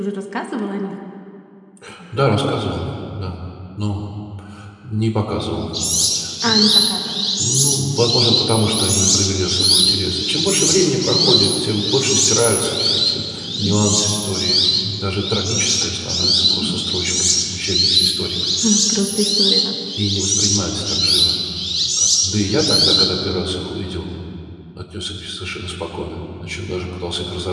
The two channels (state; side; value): identical; both; correlation 1.00